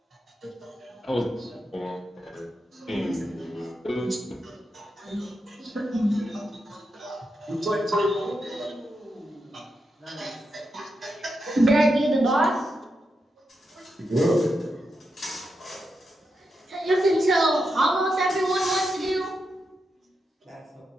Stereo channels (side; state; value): both; normal; correlation 0.86